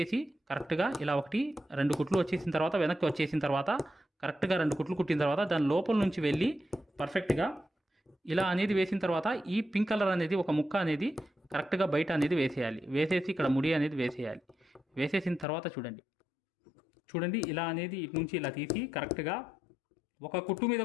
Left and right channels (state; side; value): drops out; right; at 15.5 s